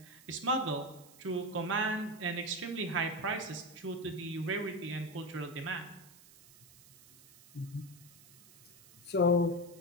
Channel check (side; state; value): right; noise; hiss, 22 dB below the sound